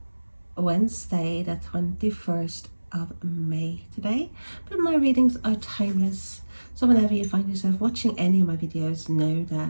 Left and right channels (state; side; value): inverted; both; correlation -1.00